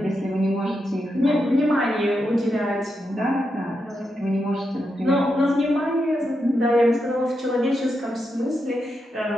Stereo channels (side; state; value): both; normal; correlation 0.85